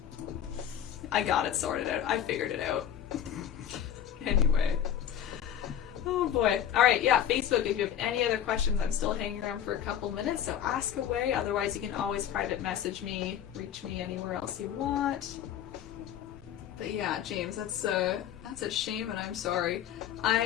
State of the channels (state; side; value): quieter; right; 9.9 dB